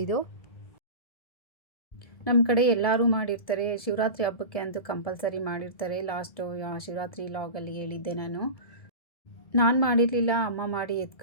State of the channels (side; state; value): right; late; 1.7 ms